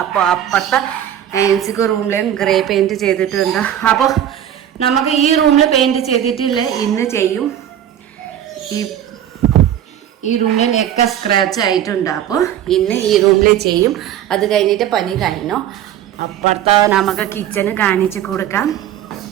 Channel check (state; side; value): quieter; left; 10.6 dB